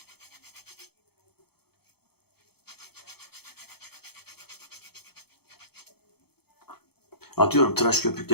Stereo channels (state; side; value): late; right; 0.96 ms